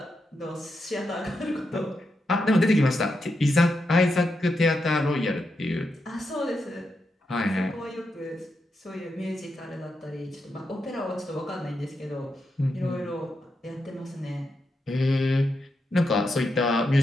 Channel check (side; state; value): both; normal; correlation 0.85